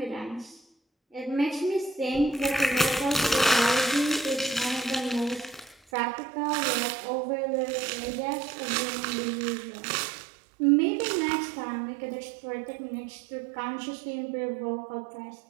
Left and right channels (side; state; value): left; drops out; at 5.8 s